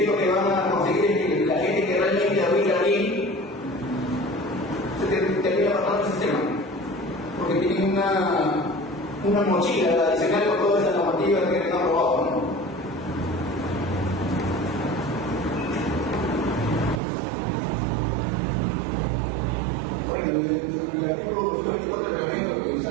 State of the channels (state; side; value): drops out; left; at 17.0 s